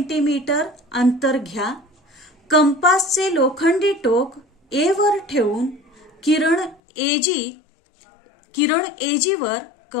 अंतर घ्या. कंपासचे लोखंडी टोक A वर ठेवून किरण AG वर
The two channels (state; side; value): drops out; right; at 6.8 s